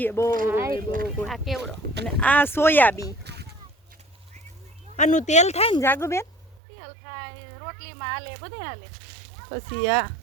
બહુ આ કેવડો અને આ સોયાબી આનું તેલ થાય ને જાગુબેન તેલ થાય રોટલીમાં હાલે બધે હાલે પછી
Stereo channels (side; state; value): left; drops out; at 6.6 s